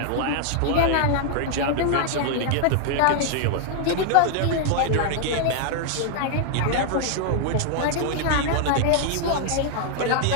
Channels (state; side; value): different; both; correlation 0.00